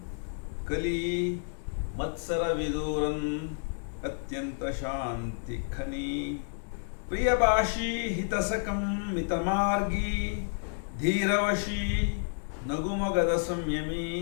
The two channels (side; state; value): right; silent; digital silence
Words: ಕಲಿ ಮತ್ಸರ ವಿದೂರನ್ ಅತ್ಯಂತ ಶಾಂತಿ ಖನಿ, ಪ್ರಿಯಭಾಷಿ ಹಿತಸಕಂ ಮಿತಮಾರ್ಗಿ, ಧೀರವಶಿ ನಗುಮೊಗದ ಸಂಯಮಿ,